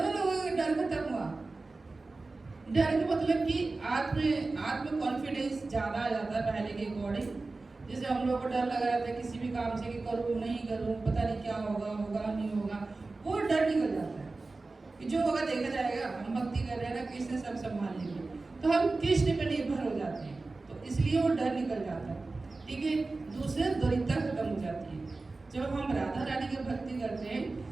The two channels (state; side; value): quieter; left; 3.5 dB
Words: लोगों का डर खत्म हुआ। डर का मतलब कि आत्म कॉन्फिडेंस ज़्यादा आ जाता है पहले के अकॉर्डिंग। जैसे हम लोग को डर लग रहा था किसी भी काम से कि करूँ नहीं करूँ, पता नहीं क्या होगा, होगा नहीं होगा, वो डर निकल जाता है कि जो होगा देखा जाएगा, हम भक्ति कर रहे हैं ना, कृष्ण सब संभाल लेंगे, तो हम कृष्ण पे निर्भर हो जाते हैं, तो इसलिए वो डर निकल जाता है। ठीक है, दूसरे दरिद्रता खत्म हो जाती है। जब हम राधा रानी की भक्ति करते हैं